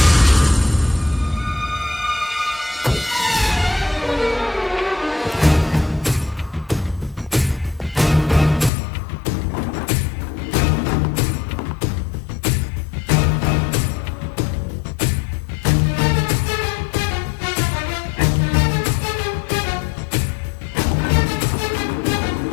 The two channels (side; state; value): right; drops out; at 8.7 s